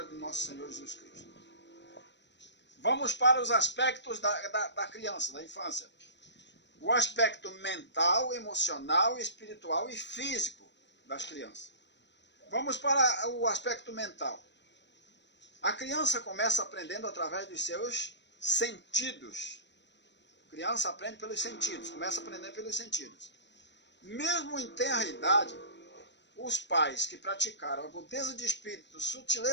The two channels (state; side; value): late; right; 0.52 ms